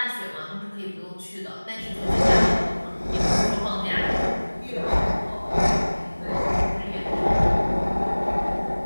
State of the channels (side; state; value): both; inverted; correlation -1.00